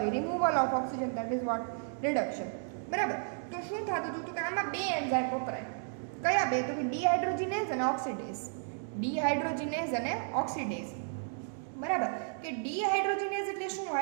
removal of oxygen that is what reduction. બરાબર. તો શું થતું હતું? તો કે આમાં બે એન્ઝાઇમ વપરાય. કયા બે? તો કે ડિહાઇડ્રોજિનેઝ અને ઓક્સિડેઝ. ડિહાઇડ્રોજિનેઝ અને ઓક્સિડેઝ. બરાબર. કે ડિહાઇડ્રોજિનેઝ એટલે શું?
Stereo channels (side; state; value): left; silent; digital silence